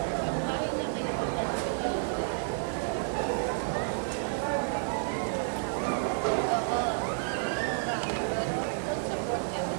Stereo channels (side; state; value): left; silent; 57 dB below the other